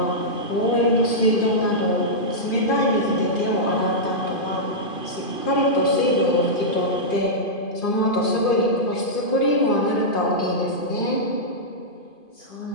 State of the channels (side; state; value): right; late; 2.5 ms